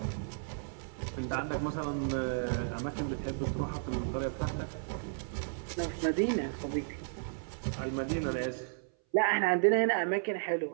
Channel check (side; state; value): left; silent; 55 dB below the other